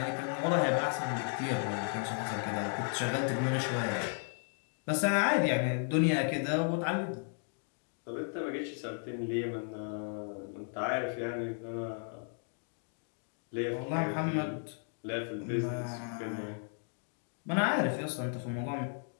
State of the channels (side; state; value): right; silent; 55 dB below the other